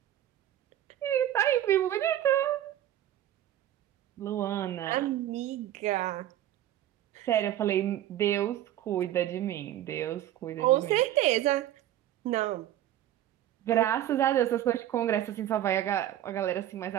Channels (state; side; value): quieter; left; 12.5 dB